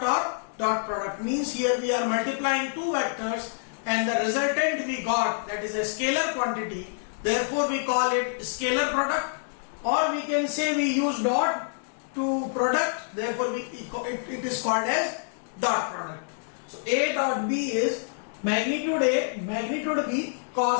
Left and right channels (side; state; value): right; silent; digital silence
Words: or dot product means here we are multiplying two vectors and the resultant we got, that is a scalar quantity, therefore we call it scalar product, or we can say we use dot to product, therefore it is called as dot product. So A dot B is magnitude A, magnitude B